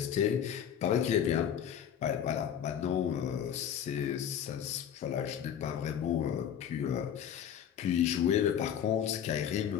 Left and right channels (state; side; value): quieter; right; 9.1 dB